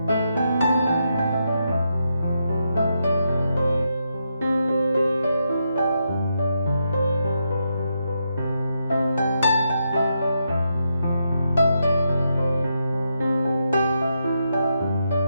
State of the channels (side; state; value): both; inverted; correlation -0.82